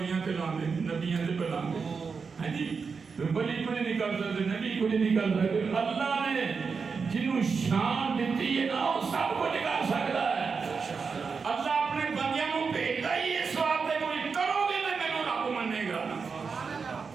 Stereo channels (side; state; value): left; quieter; 5.3 dB